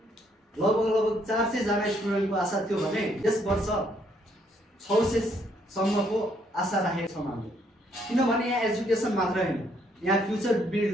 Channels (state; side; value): normal; both; correlation 0.70